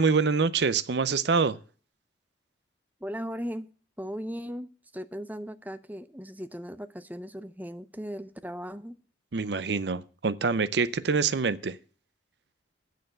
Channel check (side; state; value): left; quieter; 4.1 dB